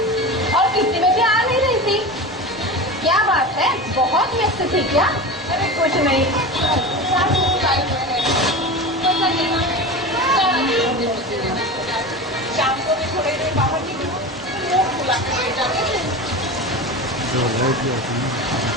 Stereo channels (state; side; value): normal; both; correlation 0.28